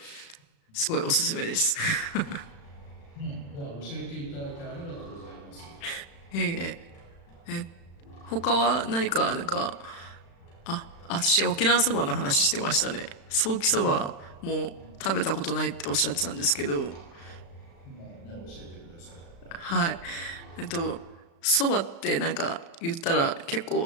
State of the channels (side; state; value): right; late; 36 ms